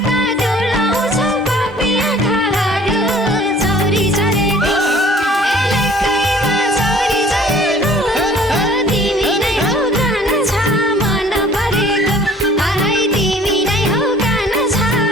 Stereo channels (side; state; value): both; normal; correlation 0.52